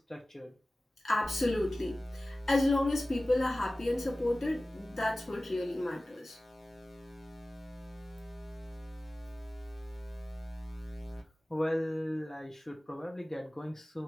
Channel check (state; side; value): normal; both; correlation 0.97